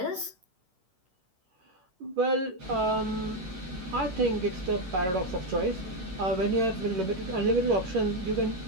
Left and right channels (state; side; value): late; left; 11 ms